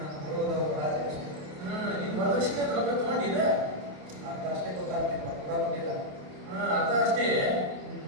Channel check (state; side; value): late; left; 28 ms